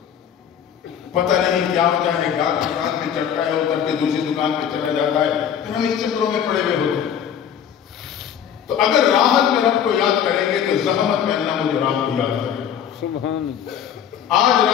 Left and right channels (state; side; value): quieter; right; 8.8 dB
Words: پتہ نہیں کیا ہوتا ہے، گاہک دکان پہ چڑھتا ہے، اتر کے دوسری دکان پہ چلا جاتا ہے، پھر ہم اس چکروں میں پڑے ہوئے ہوتے ہیں۔ تو اگر راحت میں رب کو یاد کریں گے تو زحمت میں اللہ مجھے راحت کو یاد کرے گا۔ سبحان اللہ۔ آج